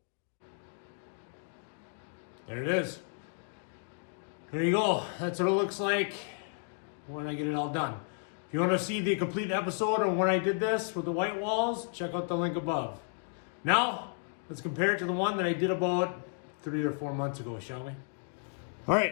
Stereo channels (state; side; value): silent; right; 56 dB below the other